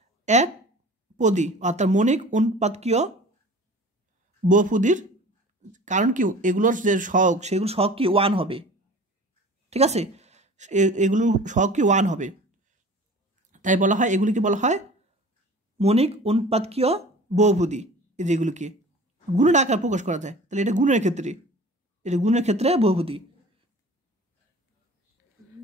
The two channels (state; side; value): normal; both; correlation 0.42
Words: এক পদী অর্থাৎ মণিক অনুৎপাদকীয় বহুপদীর, কারণ কি এগুলোর যে সহগ সেগুলো সহগ কি 1 হবে। ঠিক আছে, এগুলো সহগ কি 1 হবে, তাই বলা হয় এগুলিকে বলা হয় মণিক অনুৎপাদকীয় বহুপদী। এই যেগুলোকে গুণের আকার প্রকাশ করা যায়, তাহলে এটা গুণের ক্ষেত্রে বহুপদী।